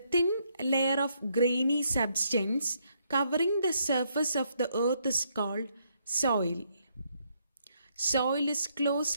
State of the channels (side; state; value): both; inverted; correlation -0.74